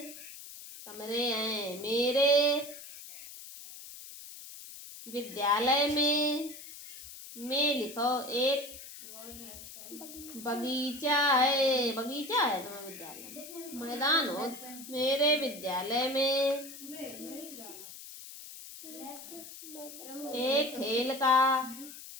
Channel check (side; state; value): left; noise; hiss, 14 dB below the sound